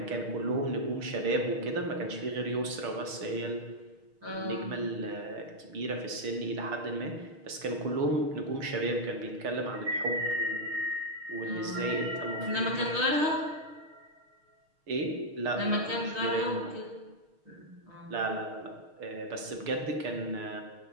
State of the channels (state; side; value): late; left; 6.4 ms